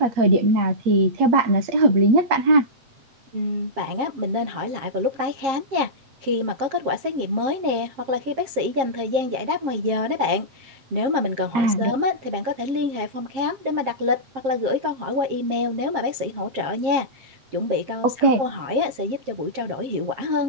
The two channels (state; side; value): late; left; 7.5 ms